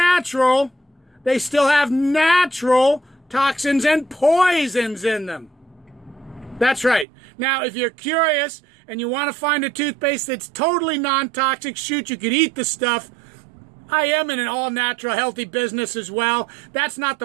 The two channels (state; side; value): drops out; left; at 7.1 s